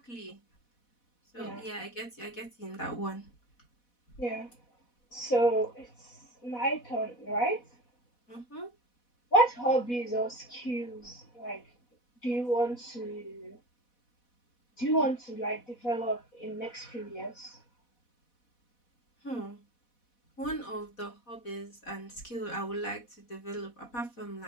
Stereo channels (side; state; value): right; late; 4.1 ms